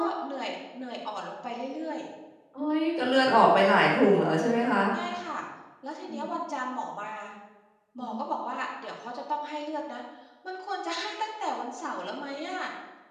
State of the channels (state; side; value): identical; both; correlation 1.00